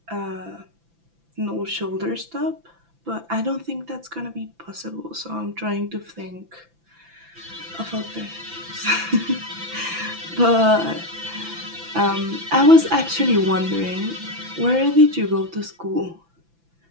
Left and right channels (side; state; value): left; late; 5.9 ms